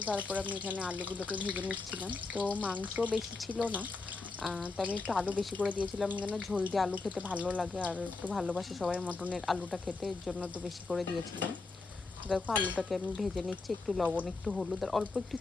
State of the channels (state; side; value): quieter; right; 3.8 dB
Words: তারপর আমি এখানে আলুগুলোকে ভেজে নিচ্ছিলাম। তো মাংস বেশি ছিল না, তো আমি একটু আলু বেশি করে দিয়েছিলাম, কেন ঝোল দিয়ে আলু খেতে ভালো লাগে আর একটু ভালোবাসে সবাই মটনের আলুটা খেতে, এর জন্য একটু বেশি করে দিয়েছিলাম। দেখো আলুটাকে আমি ভেজে নিচ্ছি, একটু লবণ, একটু হলুদ আর অল্প একটু